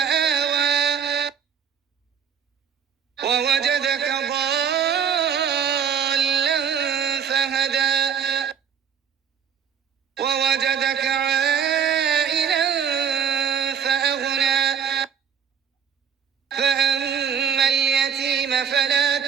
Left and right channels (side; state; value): left; quieter; 7.7 dB